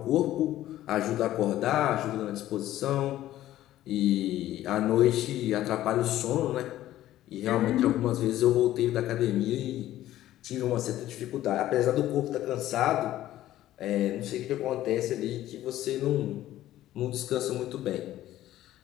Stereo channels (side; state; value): right; quieter; 13.9 dB